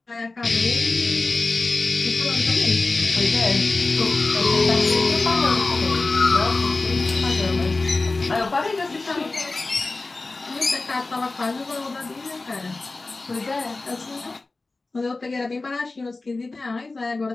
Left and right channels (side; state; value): right; quieter; 3.4 dB